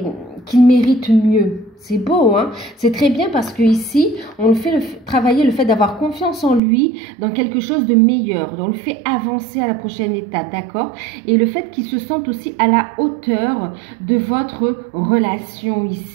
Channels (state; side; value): drops out; left; at 6.6 s